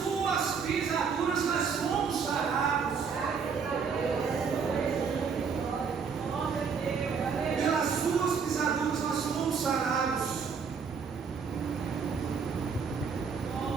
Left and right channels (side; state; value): left; quieter; 5.9 dB